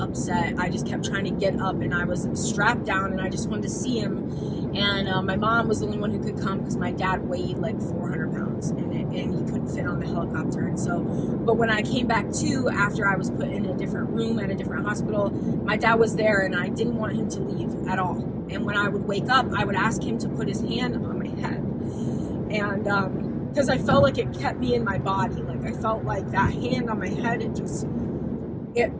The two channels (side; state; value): both; identical; correlation 1.00